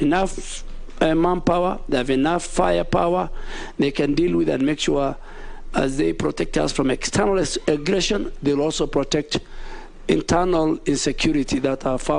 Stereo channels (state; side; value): identical; both; correlation 1.00